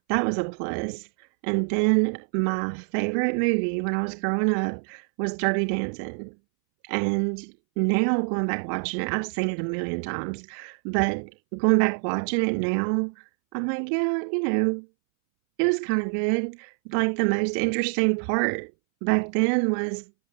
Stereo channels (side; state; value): left; silent; 61 dB below the other